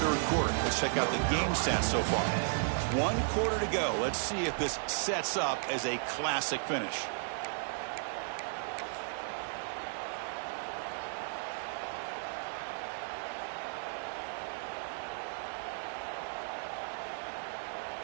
3rd quarter. Let's check out the game stats so far. 1 quarter to go. Let's see if this sets up as a classic finish.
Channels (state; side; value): silent; left; 55 dB below the other